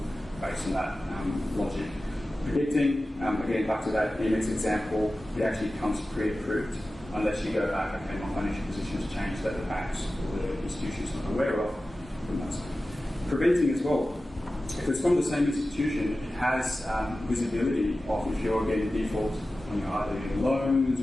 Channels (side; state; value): both; normal; correlation 0.95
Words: based on that logic. Predicting, again, back to that AMX example, it actually becomes pre-approved. Unless you go back, okay, my financial position has changed, that the banks or the institutions not aware of. Preventing as well. If it's from the same institution, it has visibility of if you're getting default on either your loans